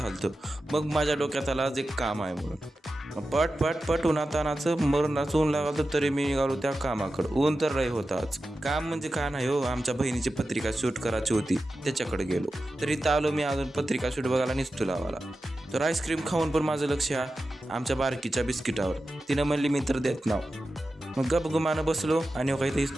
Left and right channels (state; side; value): normal; both; correlation 0.92